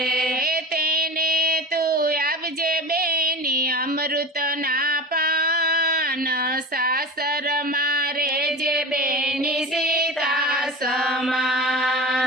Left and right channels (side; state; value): both; normal; correlation 0.30